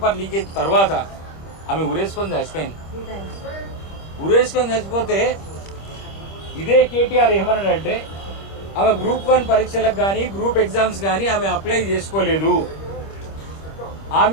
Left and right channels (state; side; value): late; right; 25 ms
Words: లీకేజ్ తర్వాత ఆమె ఉరేసుకొని చచ్చిపోయింది. ఉరేసుకొని చచ్చిపోతే ఇదే కేటీఆర్ ఏమన్నాడంటే ఆమె గ్రూప్ 1 పరీక్షలకు కానీ గ్రూప్ ఎగ్జామ్స్ కానీ ఆమె అప్లై చేసుకోలేదు,